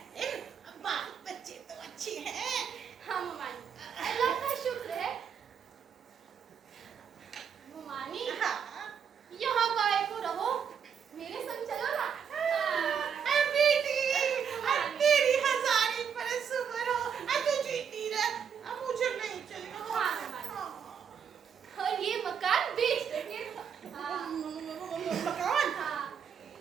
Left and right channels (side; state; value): left; quieter; 7.3 dB